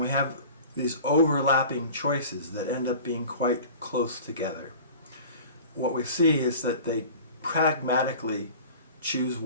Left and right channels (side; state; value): both; inverted; correlation -0.41